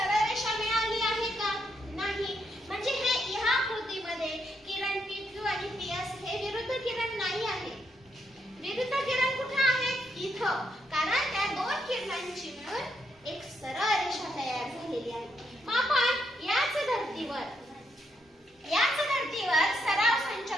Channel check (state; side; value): normal; both; correlation 0.78